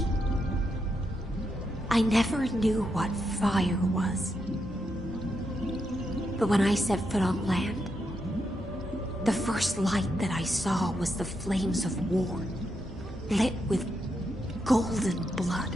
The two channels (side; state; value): both; normal; correlation 0.83